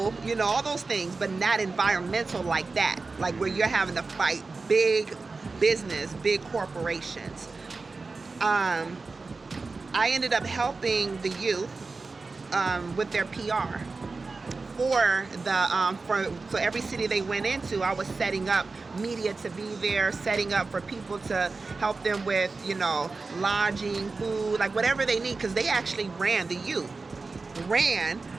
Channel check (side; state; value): left; quieter; 3.9 dB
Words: you know, all those things, but not environmental like that. Like, where you're having to fight big business, big corporations. I ended up helping the youth with their PR. For every city they went into, I was setting up media to be there, setting up for people to help them with, you know, lodging, food, like whatever they need, because they actually the youth ran